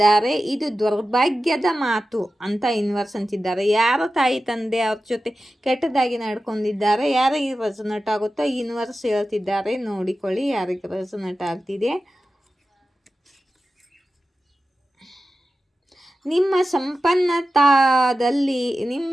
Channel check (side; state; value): both; normal; correlation 0.93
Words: ಇದು ದುರ್ಭಾಗ್ಯದ ಮಾತು ಅಂತ ಯೂನಿವರ್ಸ್ ಅಂತಿದ್ದಾರೆ. ಯಾರ ತಾಯಿ ತಂದೆ ಅವ್ರ ಜೊತೆ ಕೆಟ್ಟದಾಗಿ ನಡ್ಕೊಂಡಿದ್ದಾರೆ, ಯಾರಿಗೆ ರೆಸೊನೇಟ್ ಆಗುತ್ತೋ ಯೂನಿವರ್ಸ್ ಹೇಳ್ತಿದ್ದಾರೆ. ನೋಡಿಕೊಳ್ಳಿ ಯಾರಿಗೆ ರೆಸೊನೇಟ್ ಆಗ್ತಿದೆ. ನಿಮ್ಮ ಸಂಪನ್ನತಾ